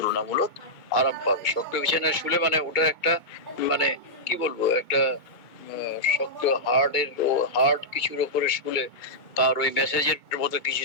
আরাম পাবে। শক্ত বিছানায় শুলে মানে ওটা একটা মানে কি বলবো, একটা শক্ত হার্ডের ও হার্ড কিছুর উপরে শুলে তার ওই মেসেজের মতো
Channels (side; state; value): right; late; 2.2 ms